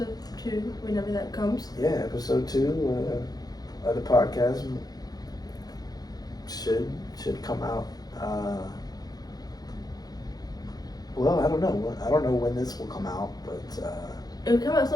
2 whenever that comes. yeah, episode 2 of the podcast should come out. Well, I don't know when this will come out, but It will come at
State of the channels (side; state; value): right; late; 0.19 ms